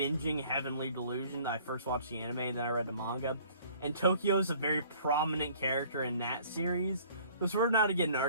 Heavenly Delusion. I first watched the anime, and then I read the manga, and Tokio's a very prominent character in that series, so sort of now to get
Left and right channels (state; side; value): inverted; both; correlation -0.54